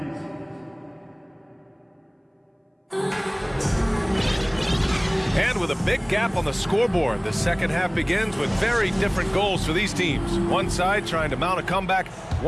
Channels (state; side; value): identical; both; correlation 1.00